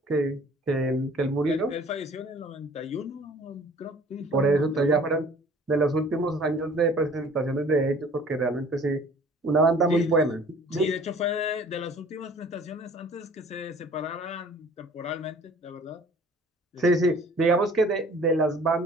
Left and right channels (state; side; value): normal; both; correlation 0.51